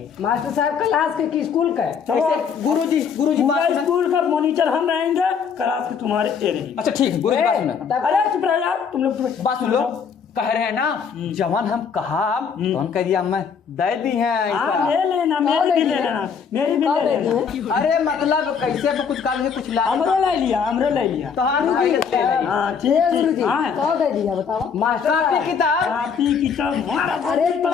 मास्टर साहब क्लास के की स्कूल का है। चलो गुरुजी पूरा बात सुनो। स्कूल का मॉनिटर हम रहेंगे क्लास के तुम्हारे ये रहेंगे। अच्छा ठीक है गुरुजी बात सुनो। तब अरे चुप रहो यार तुम लोग बात सुन लो कह रहे हैं ना जवान हम कहा तो हम कह दिया मैं दे दी है हाँ ऐसा। ले लेना मेरी भी ले लेना मेरी भी ले लेना। अरे मतलब कैसे तो कुछ काल में कुछ ला हमरे ले लिया हमरे ले लिया। तो हाँ ले लेंगे। हाँ ठीक ठीक हाँ कौन दे दिया बताओ? मास्टर कॉपी साहब किताब कापी किताब हमारा अरे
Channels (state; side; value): quieter; right; 6.5 dB